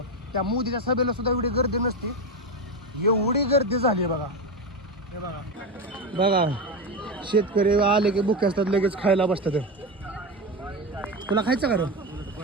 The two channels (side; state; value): both; normal; correlation 0.16